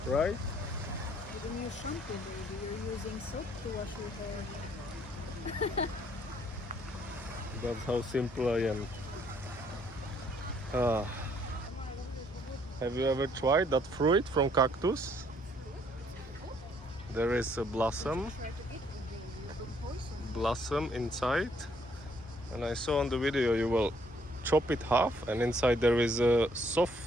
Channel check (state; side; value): normal; both; correlation 0.65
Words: right? You don't use shampoo, baby. You're using soap to wash your hair. That's how simple I am. Ah. Have you ever tried that fruit from cactus? There is a blossom Try to eat it, baby. You put poison. blossom inside, and I saw on the video you will chop it half and inside there is a